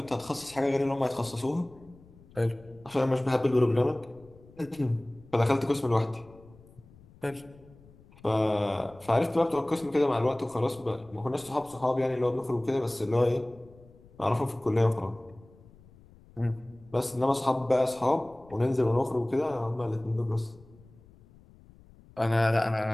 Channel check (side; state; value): left; noise; rumble, 25 dB below the sound